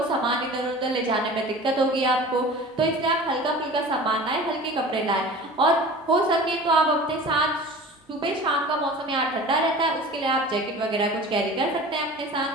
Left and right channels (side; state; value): both; normal; correlation 0.39